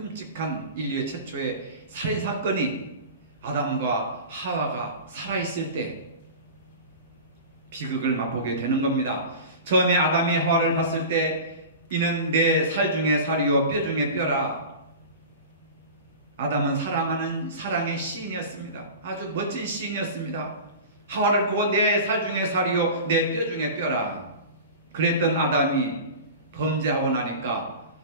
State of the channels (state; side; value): inverted; both; correlation -0.34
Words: 인류의 최초의 살인 사건이 아담과 하와가 살아있을 때 비극을 맛보게 되는 겁니다. 처음에 아담이 하와를 봤을 때 이는 내 살 중에 살이요 뼈 중에 뼈라. 아담은 사랑하는 사랑의 시인이었습니다. 아주 멋진 시인이었습니다. 하와를 보고 내 살 중에 살이요 내 뼈 중에 뼈라. 그랬던 아담이 범죄하고 나니까